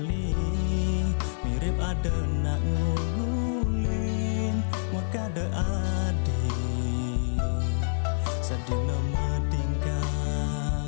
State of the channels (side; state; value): right; silent; 60 dB below the other